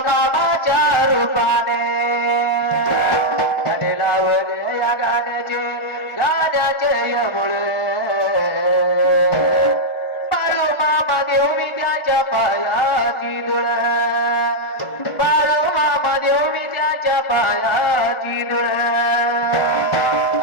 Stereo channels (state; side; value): late; right; 1.4 ms